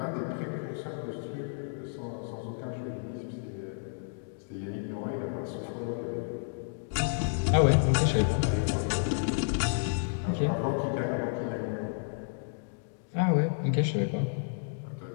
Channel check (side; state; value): right; silent; digital silence